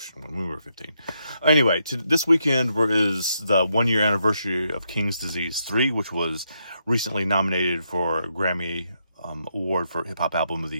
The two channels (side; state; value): both; inverted; correlation -0.80